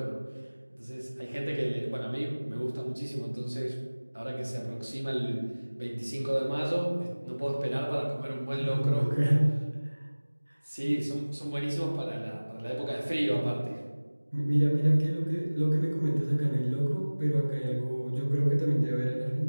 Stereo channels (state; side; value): inverted; both; correlation -1.00